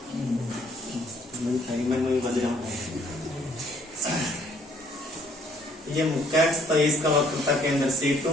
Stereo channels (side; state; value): both; normal; correlation 0.63